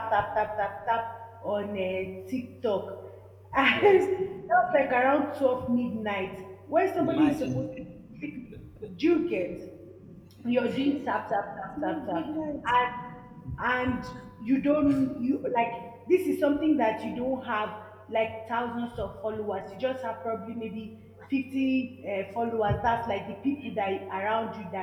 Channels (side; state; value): both; identical; correlation 1.00